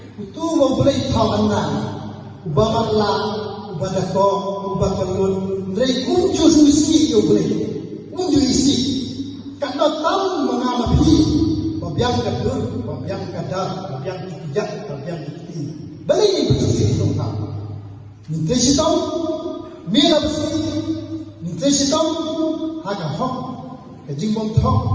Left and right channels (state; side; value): identical; both; correlation 1.00